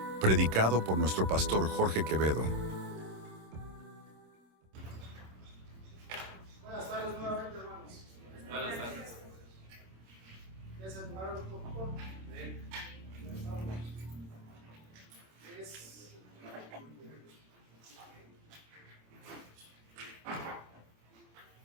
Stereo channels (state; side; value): late; left; 26 ms